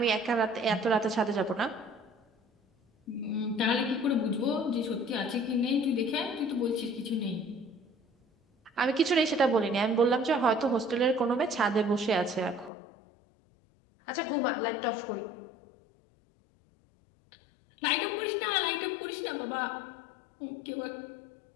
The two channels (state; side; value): drops out; right; at 12.7 s